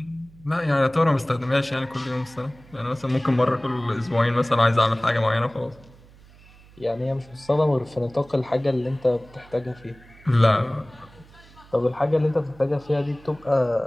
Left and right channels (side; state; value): right; noise; hum, 24 dB below the sound